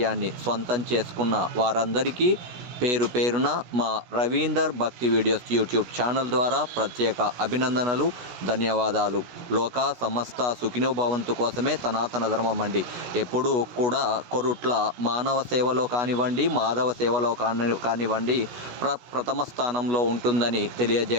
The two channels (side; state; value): left; late; 16 ms